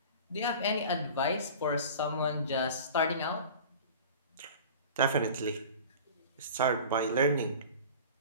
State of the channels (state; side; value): inverted; both; correlation -0.39